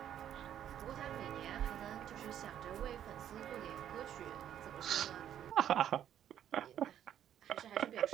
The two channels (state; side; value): quieter; left; 10.3 dB